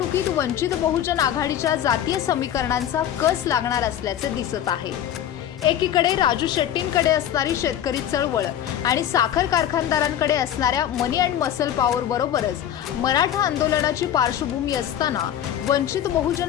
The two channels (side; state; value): right; quieter; 10.6 dB